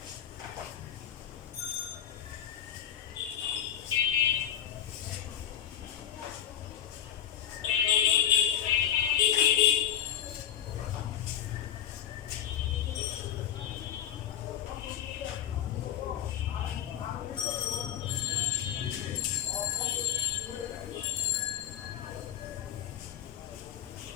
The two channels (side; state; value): right; quieter; 10.1 dB